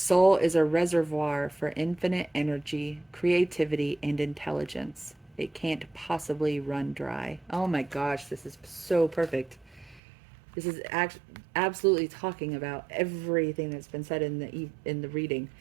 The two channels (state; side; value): drops out; left; at 10.0 s